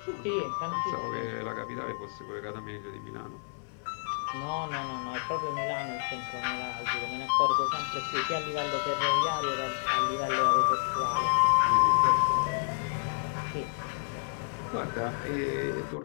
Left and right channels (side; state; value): right; silent; digital silence